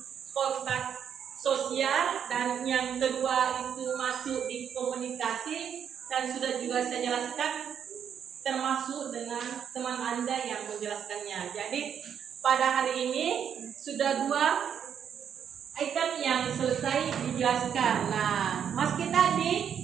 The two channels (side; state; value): left; quieter; 8.2 dB